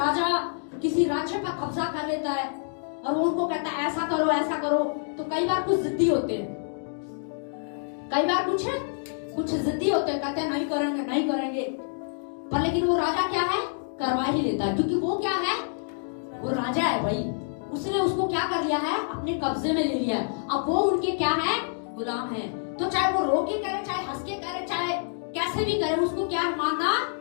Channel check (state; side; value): silent; right; digital silence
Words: किसी राज्य पर कब्जा कर लेता है और वो उनको कहता है ऐसा करो, तो कई बार कुछ जिद्दी होते हैं, कई बार कुछ जिद्दी होते हैं, कहते हैं नहीं करेंगे, पर लेकिन वो राजा क्या है, करवा ही लेता है, क्योंकि वो क्या है, वो राजा है भाई। उसने उसको क्या कर लिया है, अपने कब्जे में ले लिया है। अब वो उनके क्या है, गुलाम है। तो चाहे वो रो के करे, चाहे हंस के करे, चाहे कैसे भी करे, उसको क्या